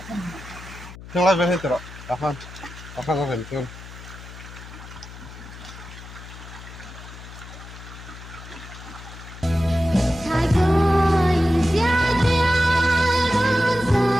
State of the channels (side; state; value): left; noise; hum, 15 dB below the sound